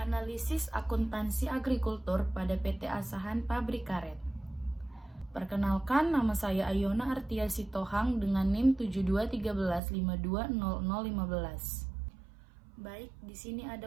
Analisis akuntansi agrikultur pada PT Asahan Pabrik Karet. Perkenalkan, nama saya Ayona Artia Sitohang dengan NIM 7213520015. Baik, di sini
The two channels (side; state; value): left; drops out; at 9.8 s